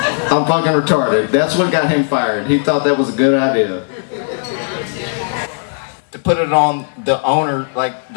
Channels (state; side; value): silent; right; 69 dB below the other